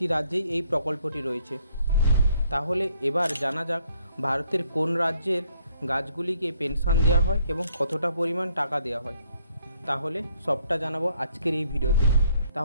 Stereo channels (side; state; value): both; inverted; correlation -0.67